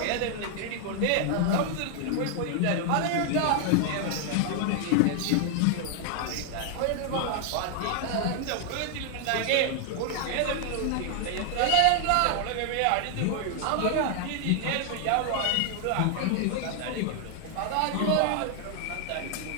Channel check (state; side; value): different; both; correlation 0.00